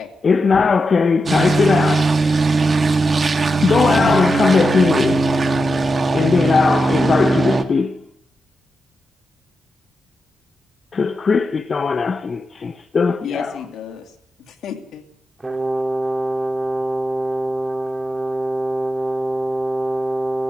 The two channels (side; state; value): both; normal; correlation 0.88